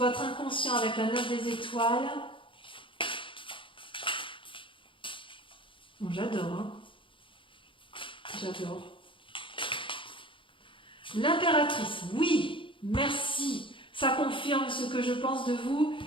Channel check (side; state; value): right; late; 0.25 ms